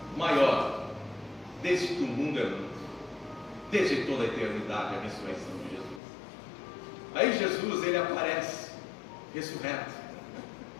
maior, desde que o mundo é mundo, desde toda a eternidade, a ressurreição de Jesus. Aí Jesus, ele aparece ressurreto,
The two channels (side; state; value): right; drops out; at 6.0 s